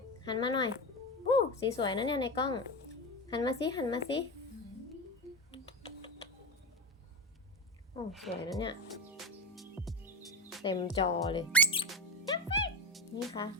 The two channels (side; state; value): both; normal; correlation 0.19